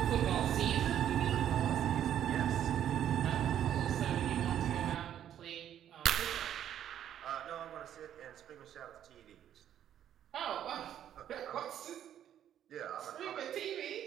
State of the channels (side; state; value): left; quieter; 10.4 dB